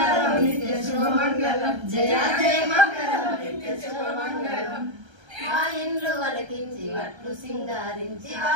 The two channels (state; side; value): late; left; 1.3 ms